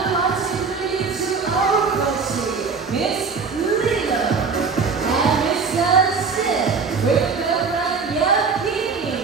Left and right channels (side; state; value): left; quieter; 5.1 dB